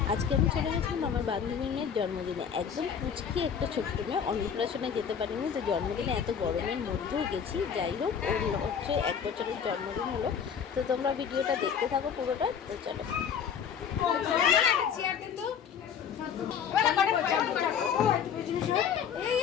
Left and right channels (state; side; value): quieter; right; 7.6 dB